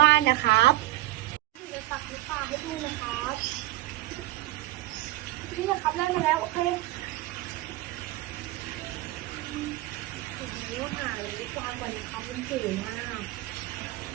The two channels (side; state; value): left; quieter; 16.2 dB